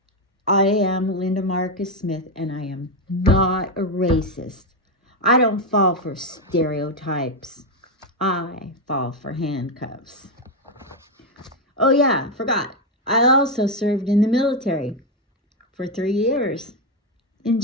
I am Linda Marcus Smith, and I am not a racist. I don't fall for stereotypes. I fall for handcuffs. Oh yeah, forgot. I also served in the military for 3 years in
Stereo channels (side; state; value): both; normal; correlation 0.07